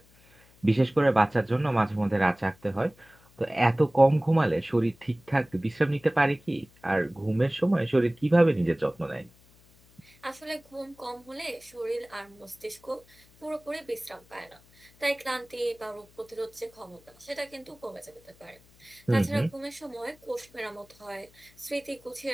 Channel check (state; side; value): noise; left; hum, 28 dB below the sound